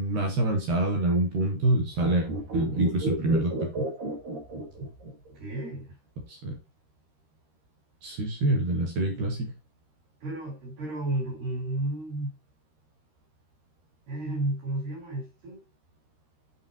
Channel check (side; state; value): left; late; 13 ms